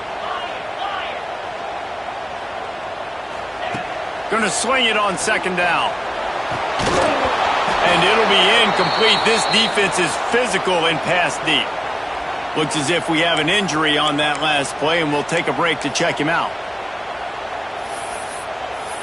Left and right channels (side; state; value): both; identical; correlation 1.00